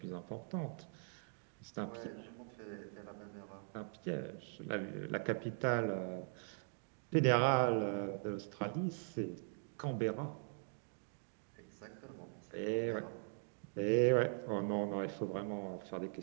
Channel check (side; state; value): left; silent; digital silence